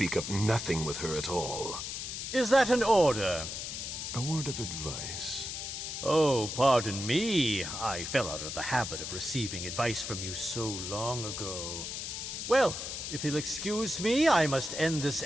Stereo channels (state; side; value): noise; left; hiss, 6 dB below the sound